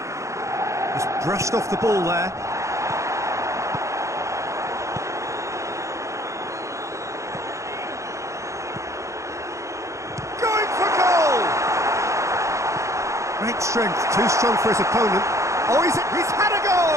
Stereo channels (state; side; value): late; left; 0.15 ms